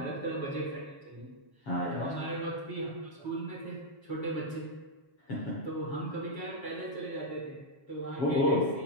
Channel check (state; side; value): late; right; 7.3 ms